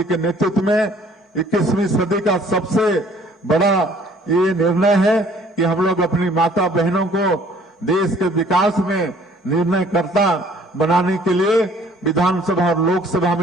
के नेतृत्व में। 21वीं सदी का सबसे बड़ा ये निर्णय है कि हम लोग अपनी माता बहनों को देश के विकास में निर्णयकर्ता बनाने के लिए विधानसभा और लोकसभा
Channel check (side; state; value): both; normal; correlation 0.57